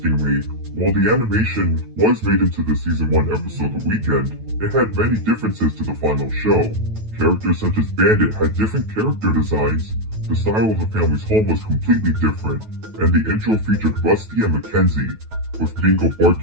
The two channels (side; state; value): left; late; 9.2 ms